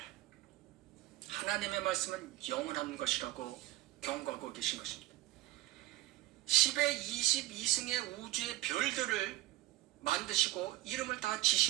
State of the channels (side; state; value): left; quieter; 16.9 dB